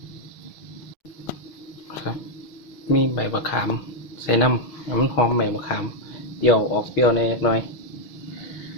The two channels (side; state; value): right; late; 6.2 ms